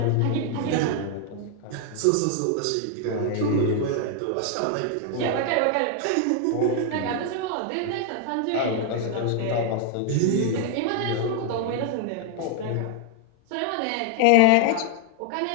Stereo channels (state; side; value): different; both; correlation 0.00